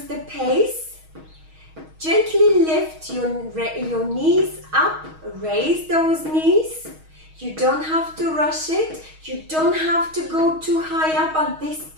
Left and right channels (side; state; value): left; late; 6.3 ms